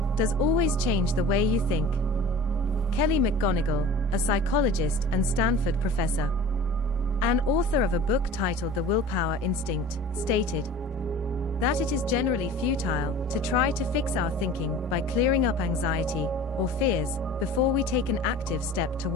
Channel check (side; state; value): both; normal; correlation 0.41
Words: does always change the way you think. Kelly McGonigal, a psychologist and Stanford professor, and author of a book titled The Willpower Instinct, stated that it is generally futile to try to fix our thinking by clearing up anxiety or fears before we take an active step